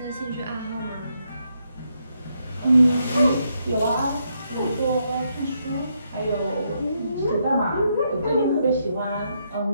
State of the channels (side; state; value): both; inverted; correlation -0.78